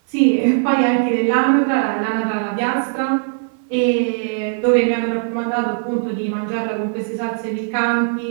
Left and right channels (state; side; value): silent; left; 59 dB below the other